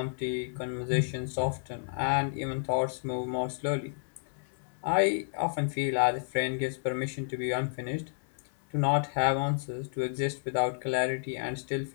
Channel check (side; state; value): right; silent; 57 dB below the other